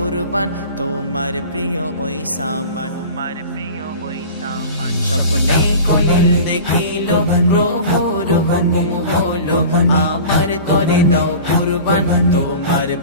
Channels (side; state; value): both; inverted; correlation -0.38